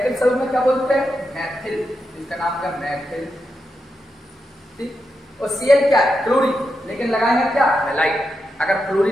समूह में क्या बोलते हैं? मैथिल, इसका नाम क्या? मैथिल, ठीक। और Cl क्या है? क्लोरीन, लेकिन लगाएंगे क्या? हैलाइड। अगर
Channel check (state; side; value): normal; both; correlation 0.86